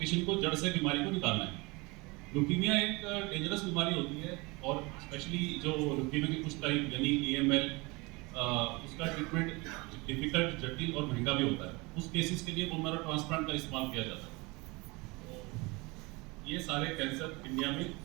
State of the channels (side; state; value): left; quieter; 25.5 dB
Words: को जड़ से बीमारी को निकालना है। ल्यूकीमिया एक डेंजरस बीमारी होती है, और स्पेशली जो ल्यूकीमिया की कुछ टाइप यानी AML, उसका ट्रीटमेंट डिफिकल्ट, जटिल और महंगा भी होता है। उस केसेस के लिए बोन मैरो ट्रांसप्लांट का इस्तेमाल किया जाता है। तो ये सारे कैंसर इंडिया में